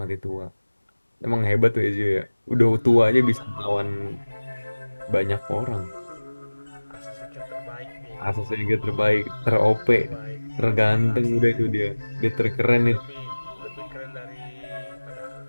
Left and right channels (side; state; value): both; inverted; correlation -1.00